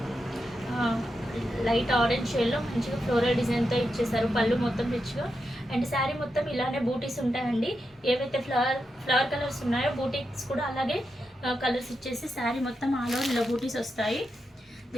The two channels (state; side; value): normal; both; correlation 0.87